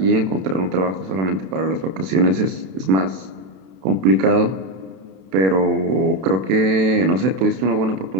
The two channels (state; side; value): late; left; 32 ms